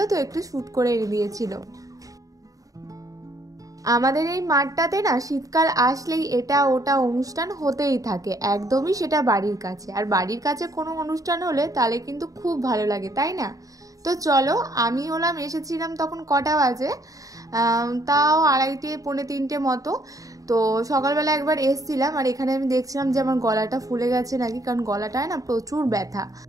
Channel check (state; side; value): late; left; 0.17 ms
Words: তো একটু শ্যুট করে এনে দিয়েছিল। আমাদের এই মাঠটাতে না শীতকাল আসলেই এটা ওটা অনুষ্ঠান হতেই থাকে, একদমই সেটা বাড়ির কাছে। আর বাড়ির কাছে কোনো অনুষ্ঠান হলে তাহলে কিন্তু খুব ভালো লাগে, তাই না? তো চলো, আমি এসেছিলাম তখন কটা বাজে, তাও 2:30 পৌনে 3টে মতো। তো সকালবেলা একবার এসছিলাম, আর এখানে আমি দেখছিলাম যে আমার গলাটা ফুলে গেছে নাকি, কারণ গলাটায় না প্রচুর ব্যথা।